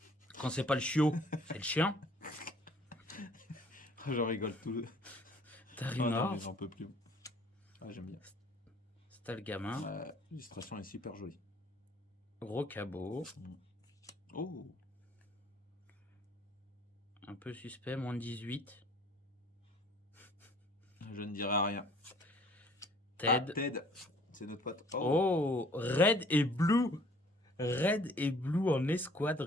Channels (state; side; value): normal; both; correlation 0.55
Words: Quand c'est pas le chiot, c'est le chien. Je rigole tout. Ah non, Tarimar, mais j'en peux plus. Ah, j'aime bien. c'est le gamin. L'illustration est super jolie. Rocabo, Oh, un peu suspect, moins de 18. je ne dirai rien. Ted. Ah, Ted, c'est notre pote. Oh, Red et Blue. Red et Blue en escouade